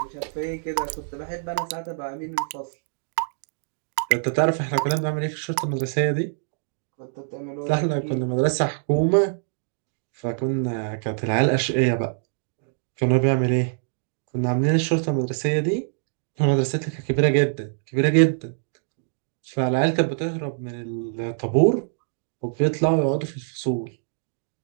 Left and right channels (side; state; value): left; silent; digital silence